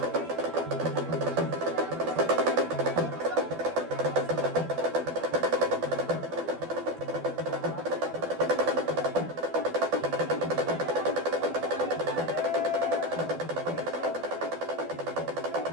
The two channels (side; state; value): left; late; 12 ms